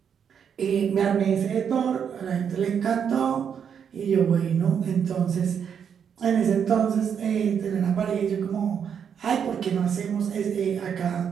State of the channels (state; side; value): quieter; left; 7.6 dB